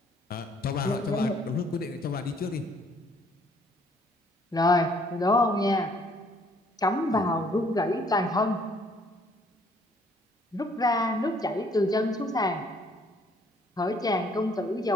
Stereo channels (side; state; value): both; normal; correlation 0.63